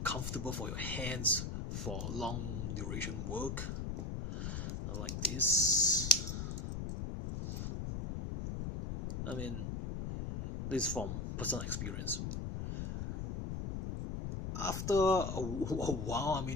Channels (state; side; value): noise; left; rumble, 4 dB below the sound